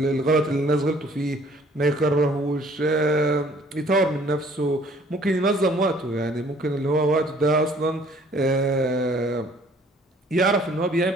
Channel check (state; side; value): normal; both; correlation 0.57